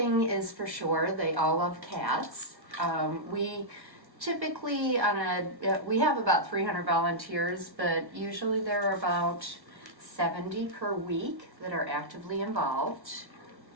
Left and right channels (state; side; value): late; left; 1.4 ms